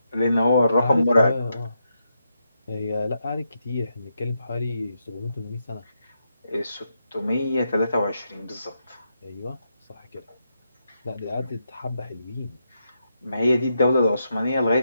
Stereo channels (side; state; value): both; inverted; correlation -0.83